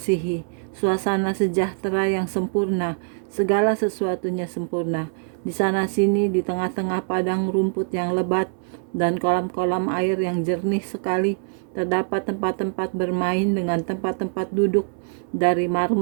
suasana sejahtera yang sempurna, segala sesuatunya sempurna. Di sana-sini, di tengah-tengah padang rumput yang lebat dan kolam-kolam air yang jernih sekali, terdapat tempat-tempat bermain dengan tempat-tempat duduk dari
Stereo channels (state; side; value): silent; left; 61 dB below the other